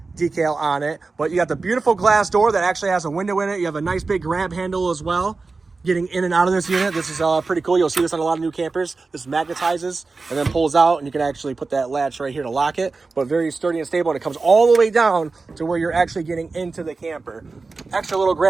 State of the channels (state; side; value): quieter; left; 4.0 dB